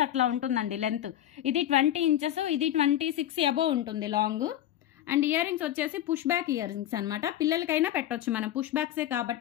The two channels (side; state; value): right; quieter; 12.2 dB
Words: అట్లా ఉంటుందండి లెంత్. ఇది 20 ఇంచెస్, ఇది 26 అబోవ్ ఉంటుంది లాంగ్. అండ్ ఇయర్ రింగ్స్ వచ్చేసి పుష్ బ్యాక్ ఇయర్ రింగ్స్ అనమాట. పిల్లలకైనా పెట్టవచ్చు, మనం పుష్ బ్యాక్సే